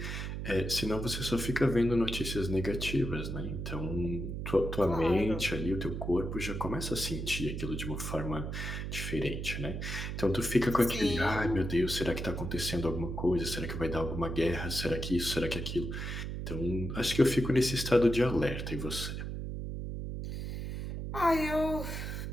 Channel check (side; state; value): right; noise; hum, 5 dB below the sound